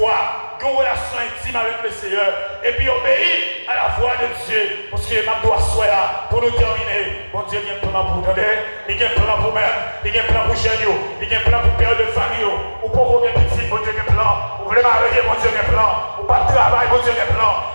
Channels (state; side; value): inverted; both; correlation -1.00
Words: une relation intime avec le Seigneur. Et puis obéir à la voix de Dieu. Parce que ma doit soit là pour nous terminer. Mon Dieu, il y a un plan pour nous donner. Il y a un plan pour nous-mêmes. Il y a un plan pour chez nous. Il y a un plan pour père de famille. Ou pour vos petits, mon Dieu, il y a un plan. Vous voulez marier, mon Dieu, il y a un plan. Ou pas de travail, mon Dieu, il y a un plan.